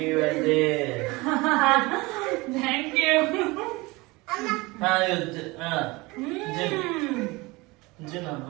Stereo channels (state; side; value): quieter; left; 23.4 dB